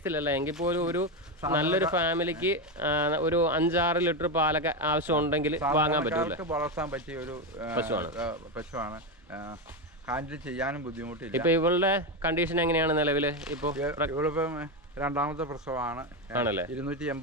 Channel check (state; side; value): normal; both; correlation 0.12